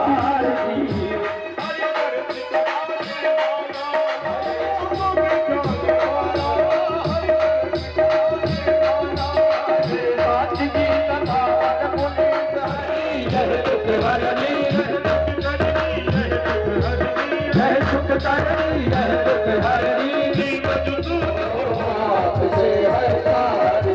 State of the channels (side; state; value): both; identical; correlation 1.00